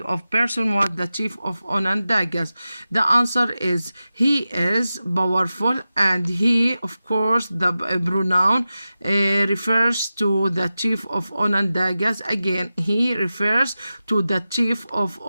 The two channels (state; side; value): inverted; both; correlation -0.94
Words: of person was the chief of Onondagas? The answer is he is powerful, and he, of course, the pronoun refers to the chief of Onondagas. Again, he refers to the chief of